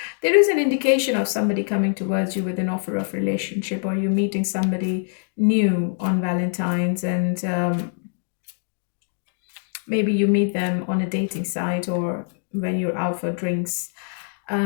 There is an indication of somebody coming towards you with an offer of relationship, or you meeting somebody new on Valentine's, and maybe you meet them on a dating site or when you're out for drinks.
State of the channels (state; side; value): silent; right; digital silence